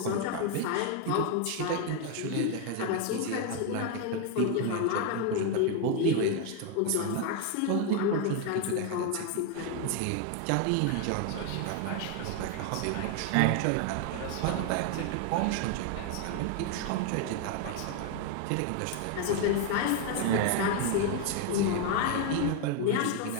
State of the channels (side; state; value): both; different; correlation 0.01